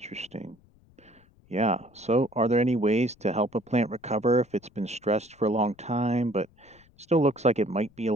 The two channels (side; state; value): left; noise; rumble, 30 dB below the sound